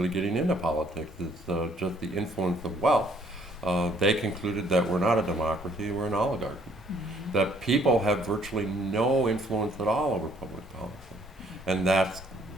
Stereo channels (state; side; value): normal; both; correlation 0.64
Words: getting into politics, is just the influence of wealth. They concluded that we're not a democracy, we're an oligarchy. Mm-hmm. That people have virtually no influence at all over public policy. And that's